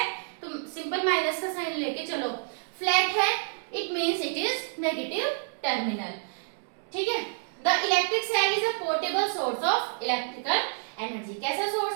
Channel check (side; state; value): left; silent; digital silence